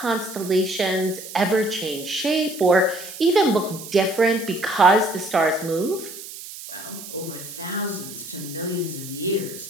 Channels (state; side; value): noise; right; hiss, 13 dB below the sound